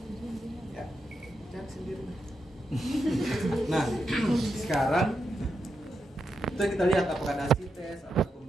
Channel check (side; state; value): both; normal; correlation 0.85